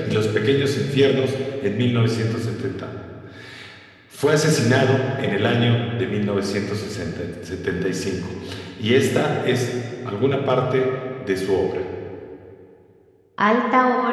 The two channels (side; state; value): both; identical; correlation 1.00